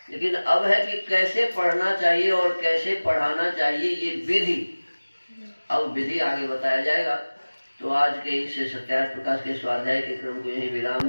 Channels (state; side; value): inverted; both; correlation -1.00